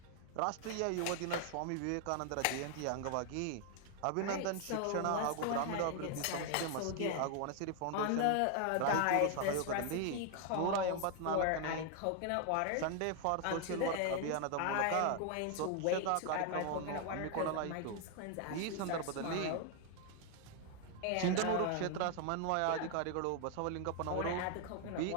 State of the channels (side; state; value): both; different; correlation 0.00